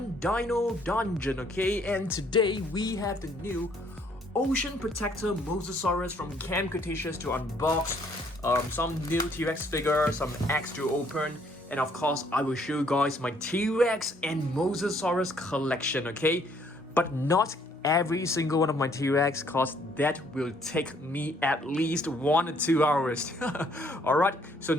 dino dungeon, okay? And today we have the new Ocean Protector Mosasaurus from Camp Cretaceous to unbox, some new T-Rex figure, some eggs to open, and of course I will show you guys my T-Rex and Mosasaurus collection, okay? But not every single one of my T-Rex, cause that will take me at least 1 or 2 hours. Alright, so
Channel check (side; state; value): both; normal; correlation 0.65